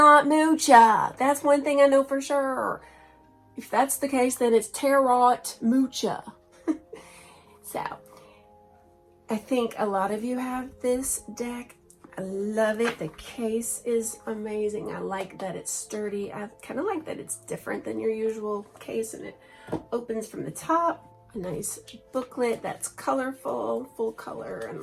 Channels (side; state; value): both; identical; correlation 1.00